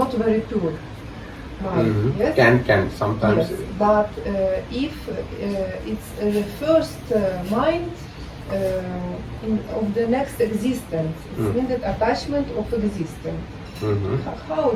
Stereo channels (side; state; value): both; identical; correlation 1.00